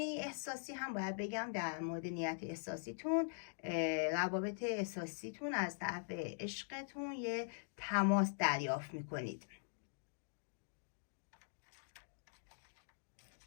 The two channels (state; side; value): silent; right; digital silence